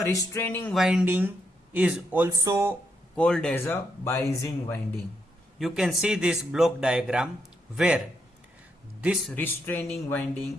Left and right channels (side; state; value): both; normal; correlation 0.80